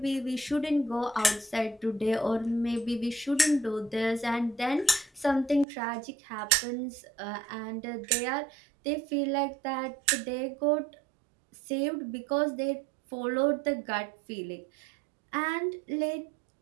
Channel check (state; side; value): drops out; left; at 5.7 s